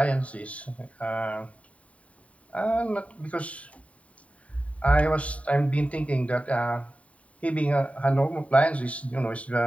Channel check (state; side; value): late; right; 0.066 ms